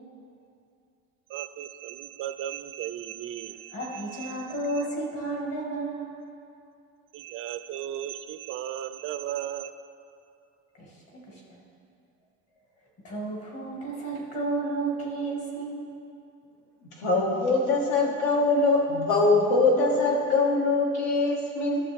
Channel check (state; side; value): normal; both; correlation 0.21